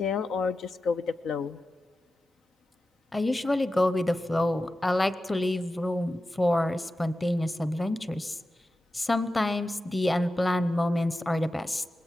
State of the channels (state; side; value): normal; both; correlation 0.93